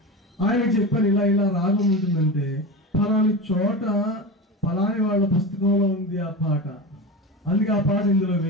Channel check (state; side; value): normal; both; correlation 0.25